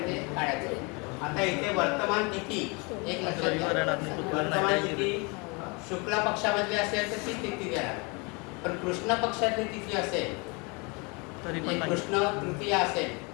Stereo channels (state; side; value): quieter; right; 30.1 dB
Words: ते काढायचं. आता इथे वर्तमान तिथी एक लक्षात घ्या. वर्तमान तिथी शुक्ल पक्षामधली असेल तर ती तिथी देणार. पण कृष्ण पक्षातली तिथी असेल तरी पण कृष्ण तृतीया असेल